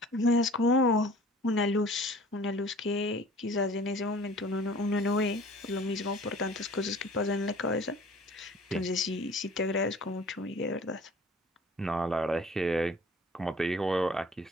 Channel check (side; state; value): both; normal; correlation 0.48